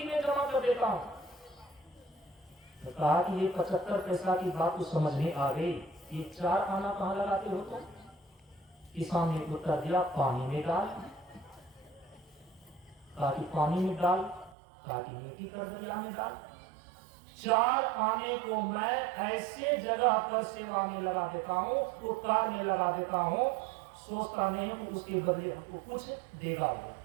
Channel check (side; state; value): left; drops out; at 14.6 s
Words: में जमा कर देता हूँ। तो कहा कि ये 75 पैसा की बात तो समझ में आ गई, ये 4 आना कहाँ लगाते हो तुम? किसान ने उत्तर दिया, पानी में डाल। कहा कि पानी में डाल? कहा कि नेकी कर दरिया में डाल। 4 आने को मैं ऐसे जगह पर सेवा में लगा देता हूँ, उपकार में लगा देता हूँ, सोचता नहीं हूँ उसके बदले हमको कुछ देगा वो,